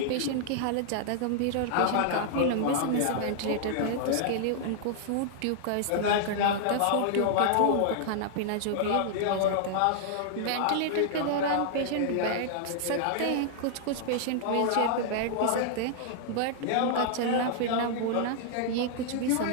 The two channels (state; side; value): different; both; correlation -0.01